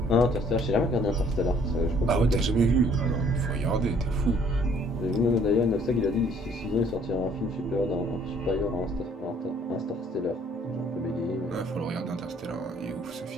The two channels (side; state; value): both; normal; correlation 0.60